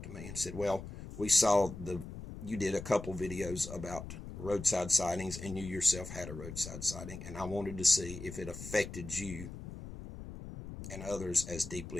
to me? And he said, well, we saw you did a couple videos about roadside sightings, and you yourself had a roadside sighting, and I wanted to see if it affected you and others as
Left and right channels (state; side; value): noise; left; rumble, 10 dB below the sound